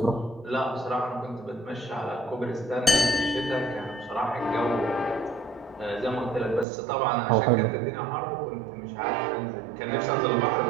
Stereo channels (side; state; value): left; drops out; at 6.7 s